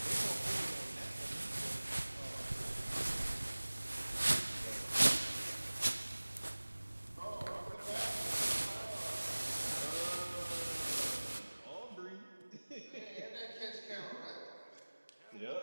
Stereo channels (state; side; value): inverted; both; correlation -1.00